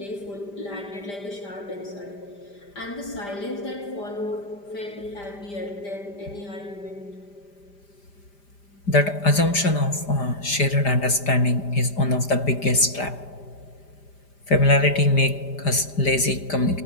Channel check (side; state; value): right; late; 5.0 ms